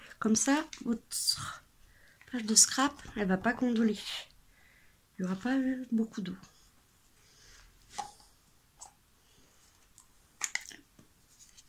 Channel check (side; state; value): both; identical; correlation 1.00